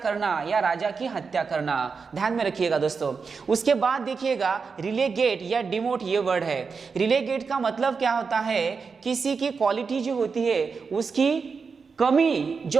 या राजा की हत्या करना। ध्यान में रखिएगा दोस्तों। उसके बाद देखिएगा रिलेगेट या डिमोट ये वर्ड है। रिलेगेट का मतलब क्या होता है? किसी की क्वालिटी जो होती है, उसकी कमी जो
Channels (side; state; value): left; quieter; 5.2 dB